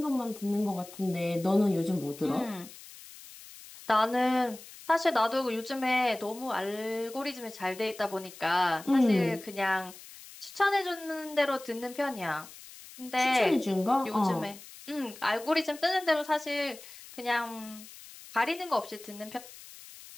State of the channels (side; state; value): left; noise; hiss, 17 dB below the sound